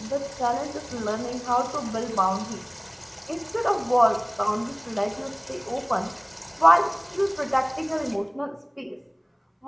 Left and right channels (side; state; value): both; identical; correlation 1.00